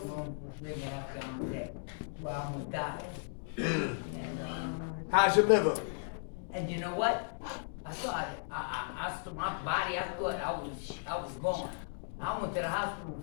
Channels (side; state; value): right; silent; digital silence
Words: 3.5 gallons a day. Well, I almost died. And, how's your liver? and you know what? I thought, my body, I thought I was gone. I went to the hospital